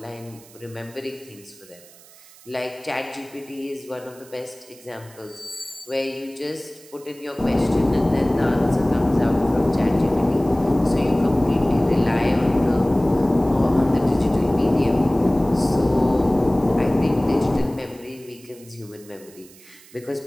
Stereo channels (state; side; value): noise; right; hiss, 23 dB below the sound